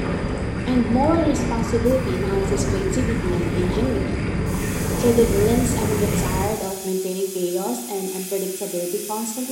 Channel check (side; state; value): both; identical; correlation 1.00